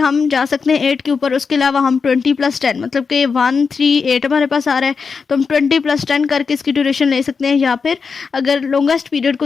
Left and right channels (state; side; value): quieter; right; 5.3 dB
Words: जा सकते हैं 8 के ऊपर। उसके अलावा हम 20 + 10 मतलब कि 1 3 8 हमारे पास आ रहा है, तो हम 20 + 10 करके इसकी ड्यूरेशन ले सकते हैं, या फिर अगर लॉन्गेस्ट पीरियड